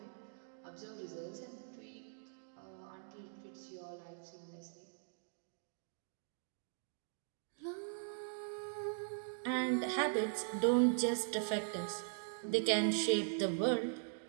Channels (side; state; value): left; silent; digital silence